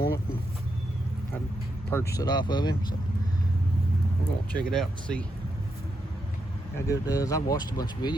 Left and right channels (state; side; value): normal; both; correlation 0.82